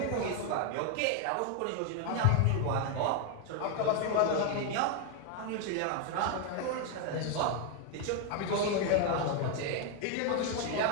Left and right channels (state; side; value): different; both; correlation 0.01